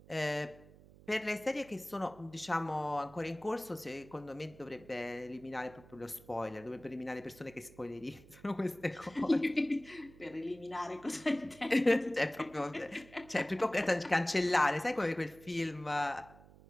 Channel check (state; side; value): noise; right; hum, 22 dB below the sound